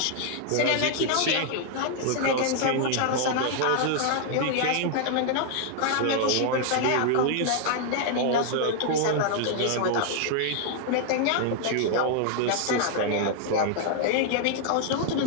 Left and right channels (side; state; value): both; different; correlation 0.00